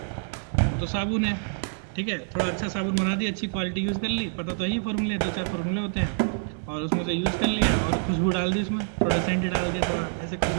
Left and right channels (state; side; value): silent; left; 60 dB below the other